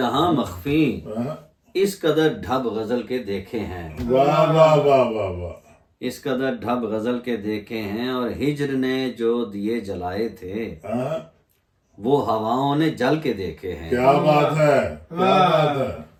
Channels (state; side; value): identical; both; correlation 1.00